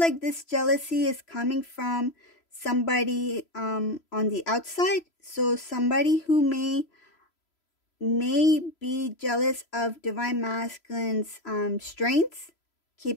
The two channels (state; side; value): late; right; 3.0 ms